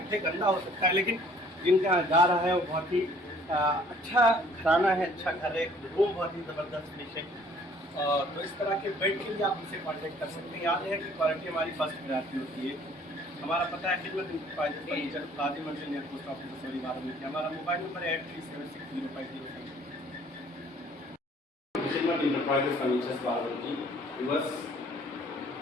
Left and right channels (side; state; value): both; normal; correlation 0.57